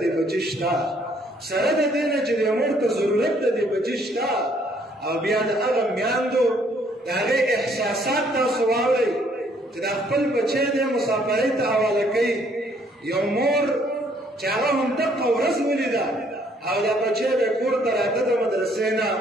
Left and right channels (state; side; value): normal; both; correlation 0.65